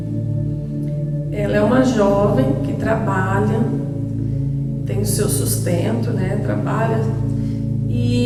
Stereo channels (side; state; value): both; identical; correlation 1.00